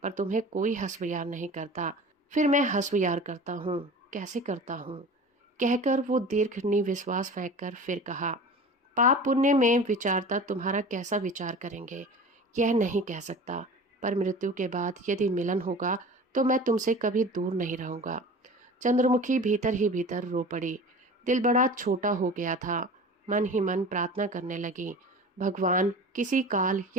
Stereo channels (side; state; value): both; normal; correlation 0.38